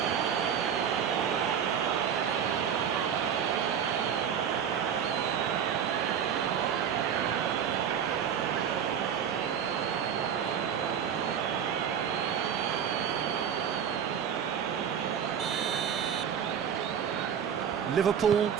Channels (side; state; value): left; quieter; 8.2 dB